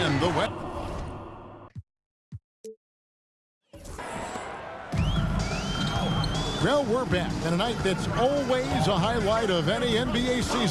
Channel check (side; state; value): both; identical; correlation 1.00